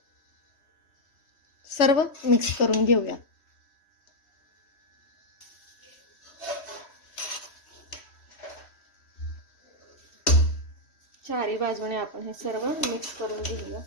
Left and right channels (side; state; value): right; late; 3.1 ms